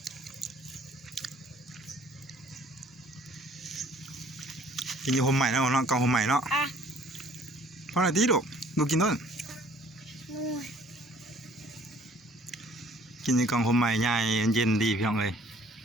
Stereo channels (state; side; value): normal; both; correlation 0.56